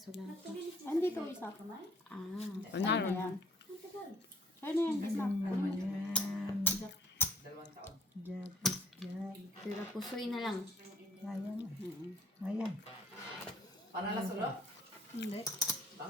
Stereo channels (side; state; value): both; normal; correlation 0.61